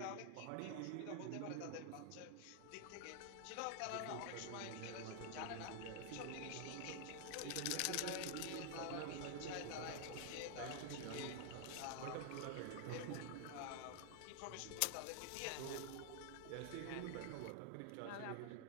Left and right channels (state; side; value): different; both; correlation 0.00